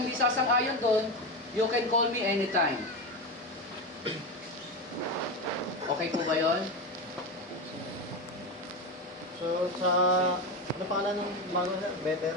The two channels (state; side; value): normal; both; correlation 0.17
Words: hindi sasang-ayon doon, you can call me anytime. Okay po ba yun? So, sa... Ano pangalan ng bago, sir? Better?